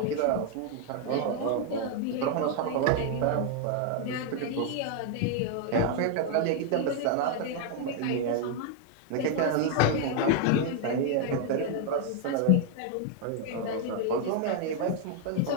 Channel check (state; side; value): different; both; correlation 0.00